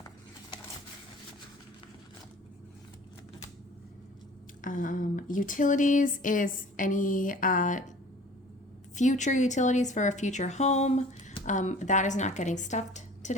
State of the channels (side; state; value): both; normal; correlation 0.46